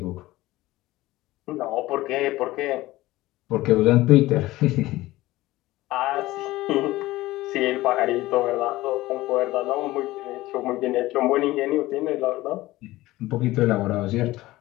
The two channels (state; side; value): quieter; right; 17.8 dB